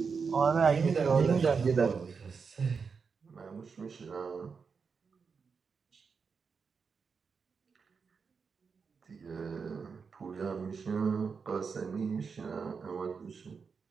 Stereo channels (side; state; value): left; quieter; 5.5 dB